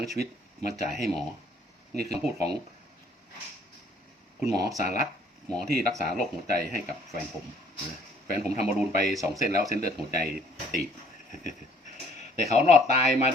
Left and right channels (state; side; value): normal; both; correlation 0.60